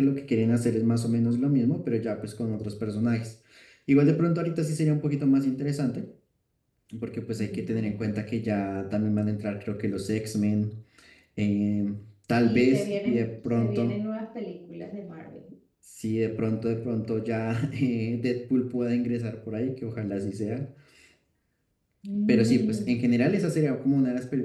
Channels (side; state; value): both; identical; correlation 1.00